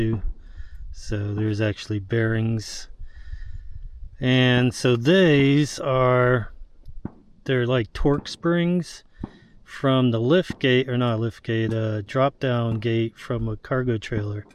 So there's actually bearings, and so these are, they're like torque springs from the lift gate, or not lift gate, drop down gate from a cargo trailer.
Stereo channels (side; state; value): both; identical; correlation 1.00